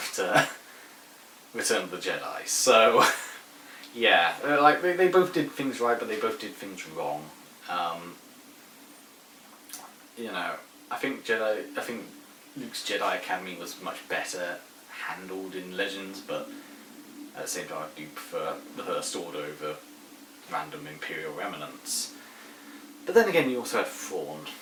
Return of the Jedi. So, yeah, like they both did things right, but they both did things wrong. I think Luke's Jedi Academy was much better handled in Legends, but at the same time I do prefer the First Order over random Imperial remnants. But then again, you also had Thrawn,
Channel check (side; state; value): both; identical; correlation 1.00